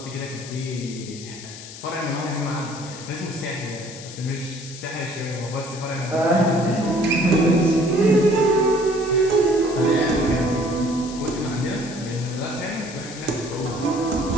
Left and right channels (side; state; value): left; noise; hiss, 14 dB below the sound